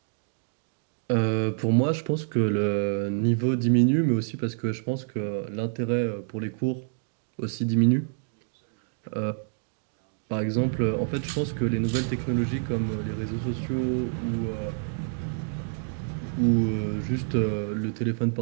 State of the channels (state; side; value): silent; left; digital silence